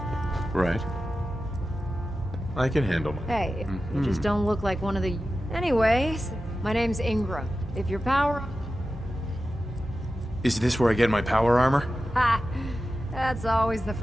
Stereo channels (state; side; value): normal; both; correlation 0.93